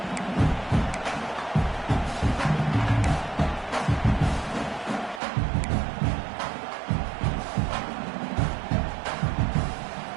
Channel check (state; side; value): drops out; left; at 5.2 s